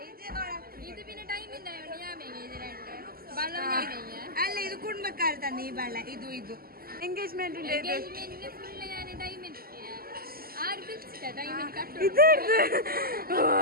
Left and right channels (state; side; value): late; left; 0.43 ms